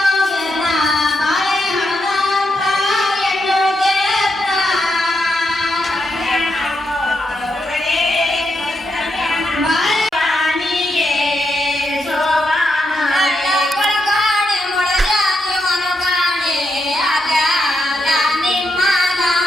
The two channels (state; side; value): normal; both; correlation 0.83